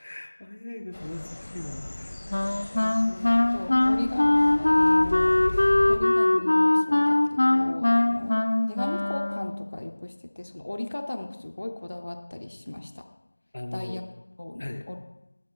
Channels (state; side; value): inverted; both; correlation -1.00